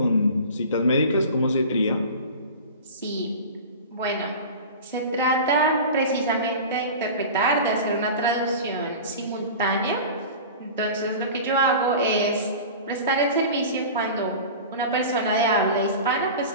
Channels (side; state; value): both; inverted; correlation -0.34